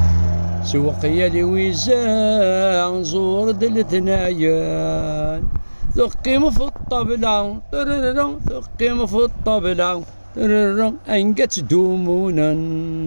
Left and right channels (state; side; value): inverted; both; correlation -1.00